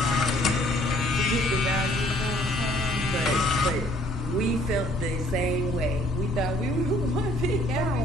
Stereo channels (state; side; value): normal; both; correlation 0.60